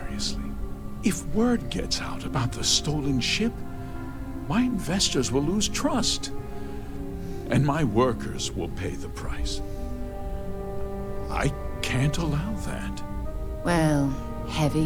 If word gets out about the stolen ship, my investors will lose trust, and my workers will pay the price. I can't allow that. Well,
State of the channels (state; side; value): identical; both; correlation 1.00